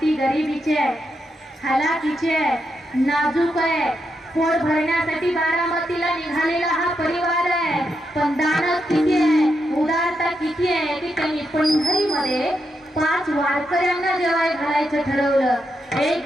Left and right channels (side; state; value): both; normal; correlation 0.83